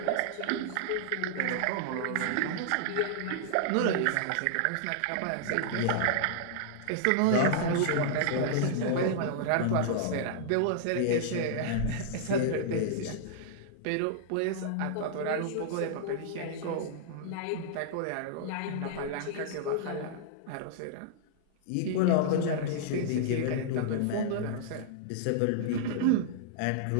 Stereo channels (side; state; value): both; different; correlation -0.01